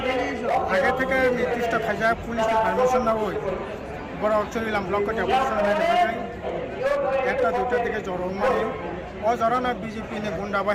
আগে থেকে নির্দিষ্ট খাজা পুলিশকে পারমিশন না হই বড় চুরিলাম ব্লক একটা দুটার দিকে জড়ন মানে অজরানা বিজেপি গুন্ডা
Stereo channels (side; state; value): both; identical; correlation 1.00